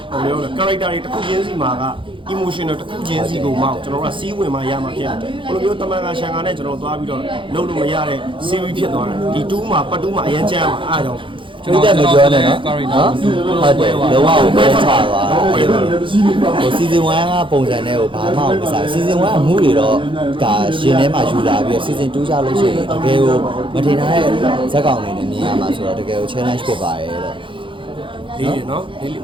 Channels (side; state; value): left; late; 0.25 ms